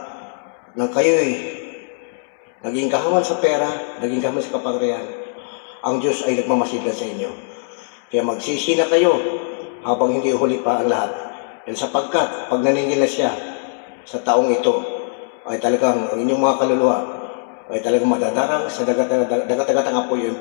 nang kayo'y naging kahaman sa pera, naging kahaman sa kapangyarihan, ang Diyos ay nagmamasidlan sa inyo. Kaya magsisi na kayo habang hindi huli pa ang lahat. Dahil sapagkat pag naningil na siya sa taong ito, ay talagang ang inyong mga kaluluwa ay talagang madadarang sa dagat-dagatang apoy o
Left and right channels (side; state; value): right; silent; 66 dB below the other